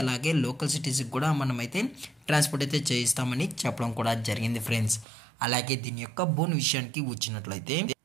అలాగే లోకల్ సిటీస్కి కూడా మనమైతే ట్రాన్స్పోర్ట్ అయితే చేయిస్తామని చెప్పడం కూడా జరిగింది ఫ్రెండ్స్. అలాగే దీని యొక్క బోన్ విషయానికి వచ్చినట్లయితే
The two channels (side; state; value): left; drops out; at 5.1 s